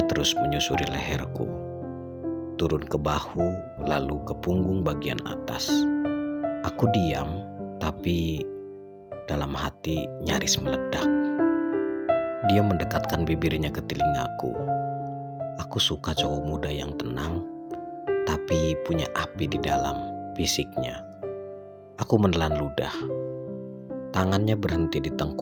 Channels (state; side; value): identical; both; correlation 1.00